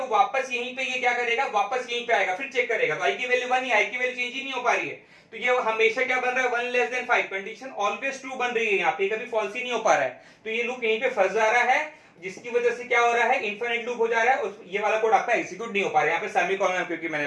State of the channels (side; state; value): both; identical; correlation 1.00